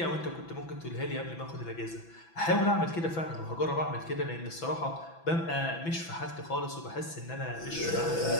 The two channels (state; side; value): late; right; 6.0 ms